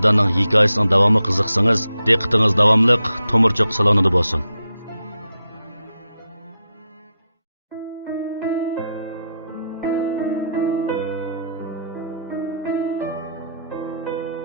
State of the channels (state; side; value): inverted; both; correlation -0.83